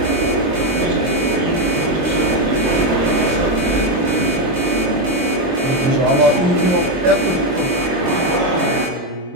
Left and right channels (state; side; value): late; left; 22 ms